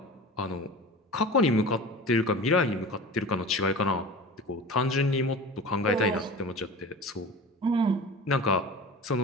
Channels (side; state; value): both; normal; correlation 0.35